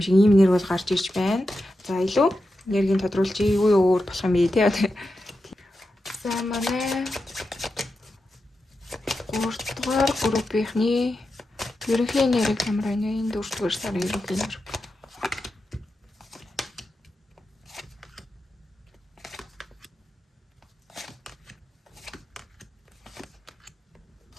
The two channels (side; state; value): both; normal; correlation 0.90